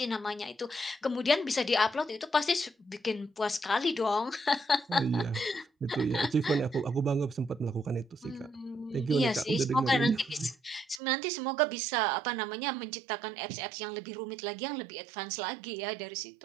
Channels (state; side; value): drops out; left; at 11.0 s